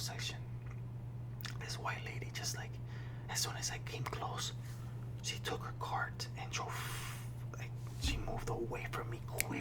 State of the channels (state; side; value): identical; both; correlation 1.00